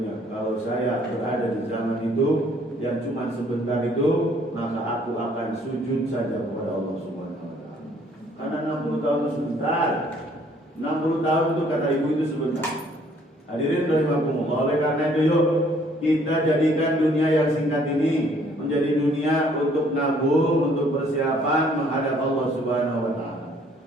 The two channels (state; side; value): normal; both; correlation 0.61